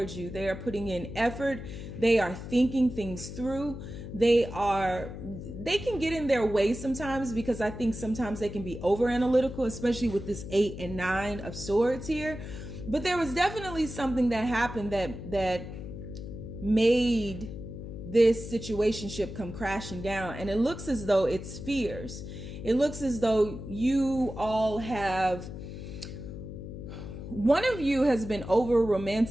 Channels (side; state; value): left; noise; hum, 10 dB below the sound